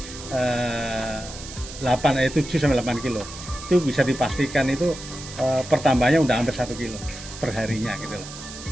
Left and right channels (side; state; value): right; noise; hiss, 13 dB below the sound